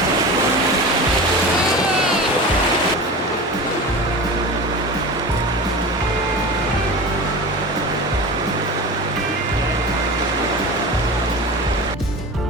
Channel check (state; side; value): normal; both; correlation 0.31